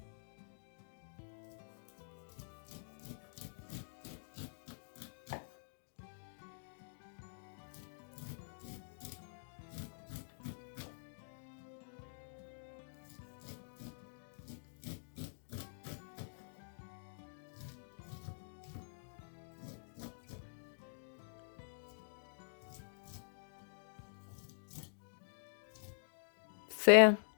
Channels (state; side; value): silent; right; digital silence